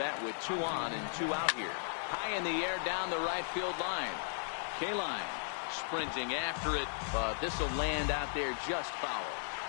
with 2 on and 2 out here. High in the air down the right field line. Kaline sprinting after it, but this will land out there just foul.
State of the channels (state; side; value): silent; right; digital silence